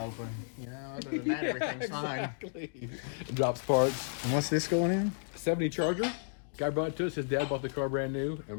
You know, other than that, everything's Exactly. It drops parts. fine. And what's this going in? 70 Charger. Guy brought it to us. His dad bought the car brand new,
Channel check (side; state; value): right; silent; digital silence